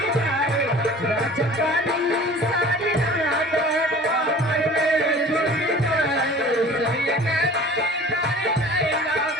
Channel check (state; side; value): normal; both; correlation 0.44